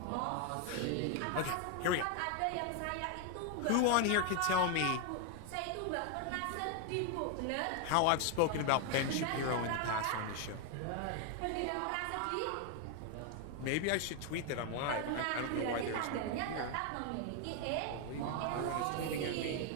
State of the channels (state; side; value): different; both; correlation 0.01